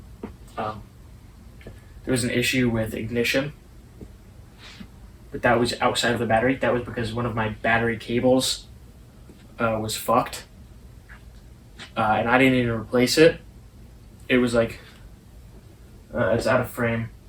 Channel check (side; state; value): both; identical; correlation 1.00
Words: There was an issue with ignition, but that was outside of the battery. That was because one of my battery cables was fucked, and I didn't even replace it. It was like, it's out of frame,